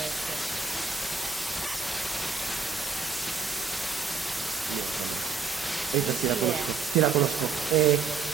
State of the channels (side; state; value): left; quieter; 5.2 dB